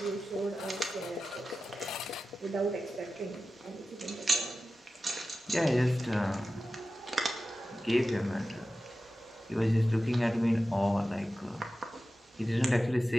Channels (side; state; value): both; normal; correlation 0.94